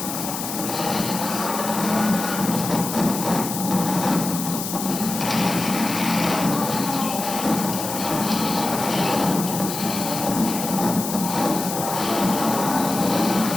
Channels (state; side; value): noise; left; hiss, 6 dB below the sound